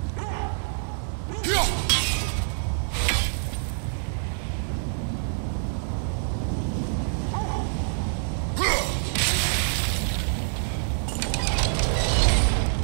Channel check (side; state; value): left; silent; 61 dB below the other